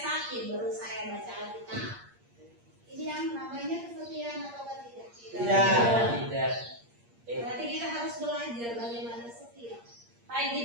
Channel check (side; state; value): left; late; 8.6 ms